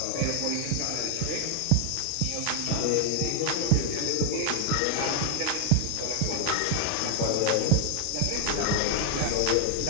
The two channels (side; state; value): both; different; correlation 0.00